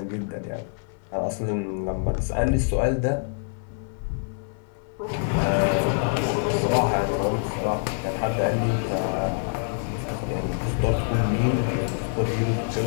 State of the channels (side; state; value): right; silent; 61 dB below the other